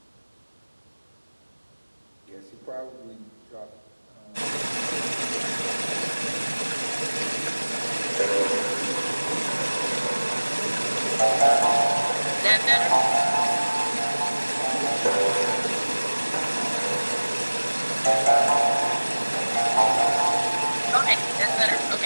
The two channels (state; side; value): inverted; both; correlation -1.00